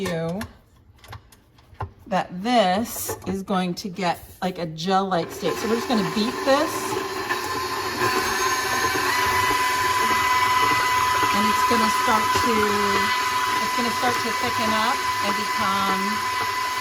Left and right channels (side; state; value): both; identical; correlation 1.00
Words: that this is going to get like a gel-like state. So we're just going to beat this. And it's going to start to thicken up and become